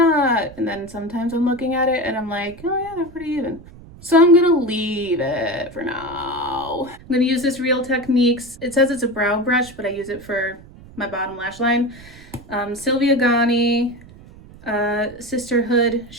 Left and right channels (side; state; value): right; noise; rumble, 20 dB below the sound